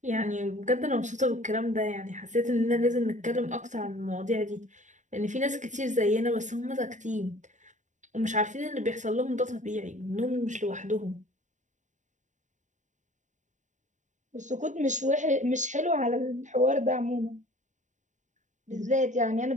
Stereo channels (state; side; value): late; left; 0.36 ms